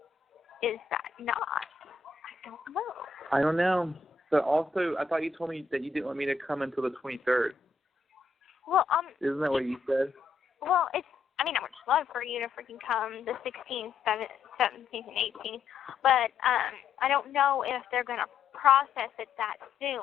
is that not? I don't know. I don't know. But also, I thought you told me that you didn't want me to come until the 23rd. Well, Isn't that what you said? Well, I would just love for you to freaking come the 16th, 17th, and 18th, but I don't know if they're going to process it that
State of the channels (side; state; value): right; quieter; 5.0 dB